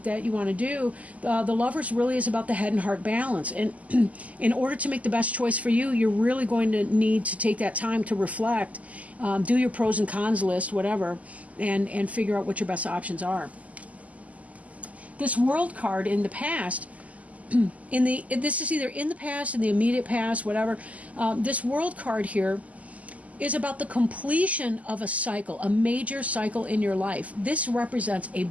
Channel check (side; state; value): left; late; 0.072 ms